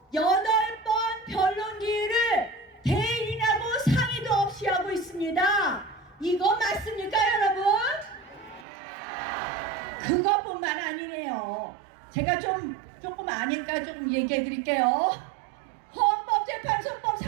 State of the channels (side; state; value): left; drops out; at 8.7 s